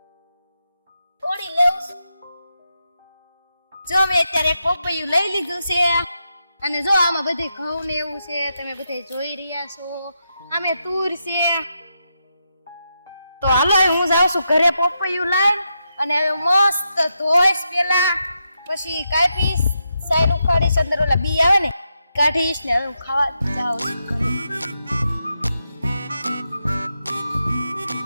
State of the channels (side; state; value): both; inverted; correlation -0.85